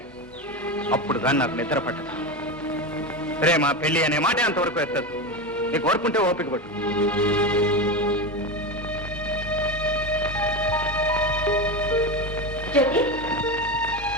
అప్పుడు కానీ నాకు నిద్ర పట్టదు. ప్రేమ పెళ్లి అనే మాట అంతవరకు ఎత్తదు. నీకు ఓర్పుంటే ఓపిక పట్టు. జ్యోతి,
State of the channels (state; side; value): normal; both; correlation 0.19